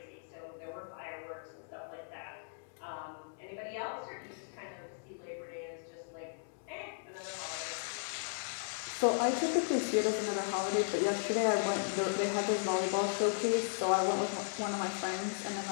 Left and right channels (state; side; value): silent; right; digital silence